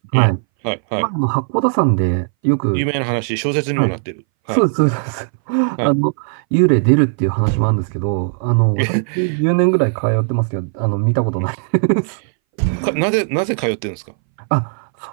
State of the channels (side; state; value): left; silent; 62 dB below the other